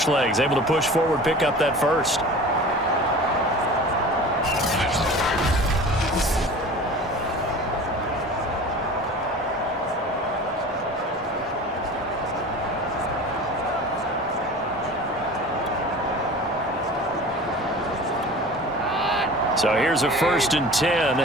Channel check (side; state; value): both; normal; correlation 0.38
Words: legs? Able to push forward, pick up that 1st. So here's a 1st and 10